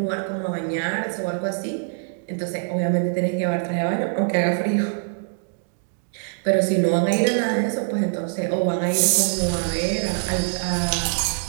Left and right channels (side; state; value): left; silent; digital silence